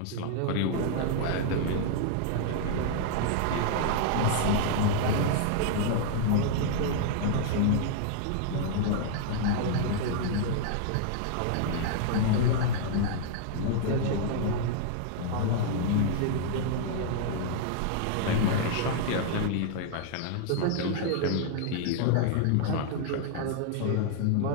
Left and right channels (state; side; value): different; both; correlation -0.01